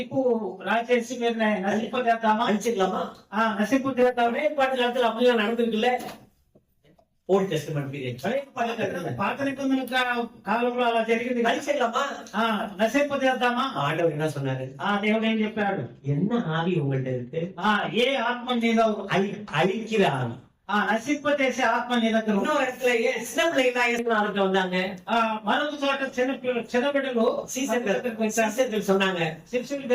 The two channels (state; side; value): identical; both; correlation 1.00